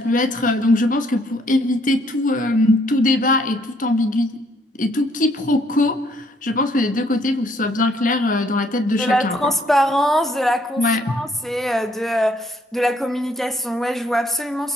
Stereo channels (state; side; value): normal; both; correlation 0.67